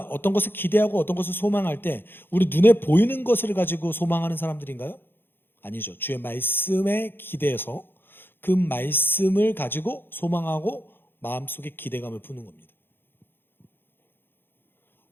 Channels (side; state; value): right; late; 0.10 ms